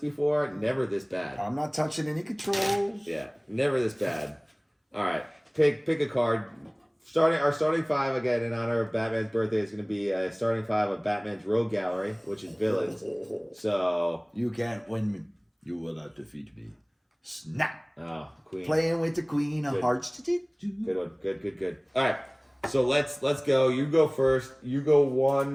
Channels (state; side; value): identical; both; correlation 1.00